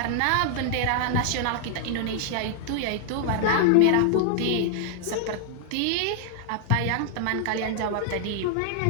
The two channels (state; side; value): different; both; correlation 0.00